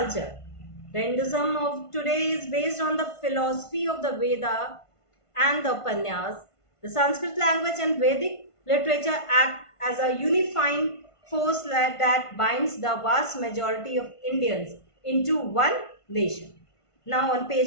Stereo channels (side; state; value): right; late; 1.5 ms